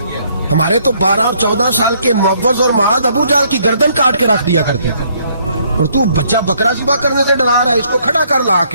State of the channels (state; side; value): inverted; both; correlation -0.67